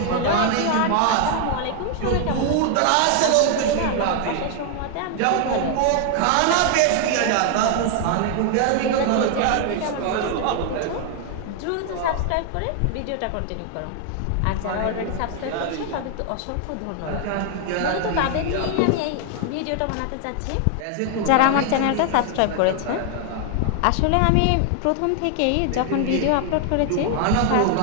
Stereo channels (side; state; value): both; different; correlation 0.00